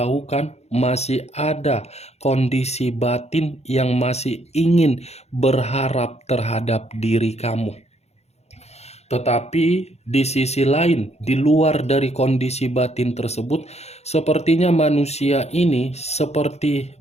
masih ada kondisi batin yang masih ingin berharap terhadap diri kamu. Tetapi di sisi lain, di luar dari kondisi batin tersebut, sepertinya manusia ini seperti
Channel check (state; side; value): late; right; 0.31 ms